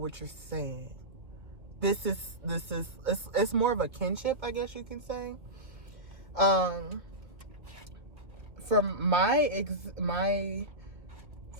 you're saying. It's more of a kinship, I guess you can say. From my experience,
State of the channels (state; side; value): late; left; 1.9 ms